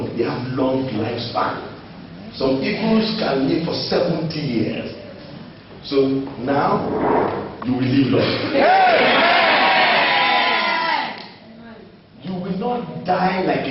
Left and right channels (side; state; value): both; identical; correlation 1.00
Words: They have long lifespan. Some eagles can live for 70 years. So now, you will live long. Yeah. You will not die like